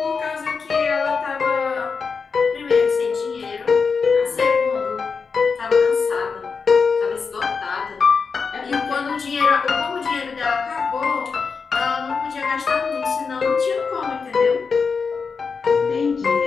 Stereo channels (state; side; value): quieter; right; 5.2 dB